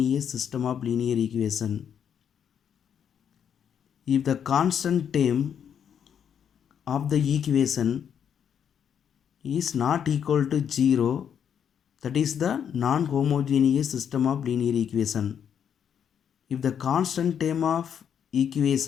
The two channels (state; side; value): quieter; right; 8.3 dB